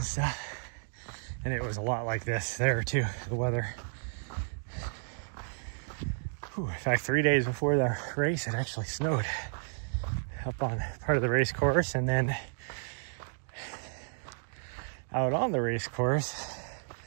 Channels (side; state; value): left; silent; digital silence